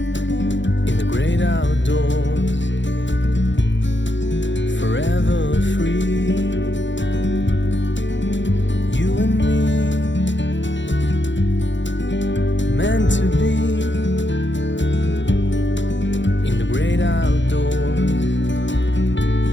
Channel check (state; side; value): late; right; 0.54 ms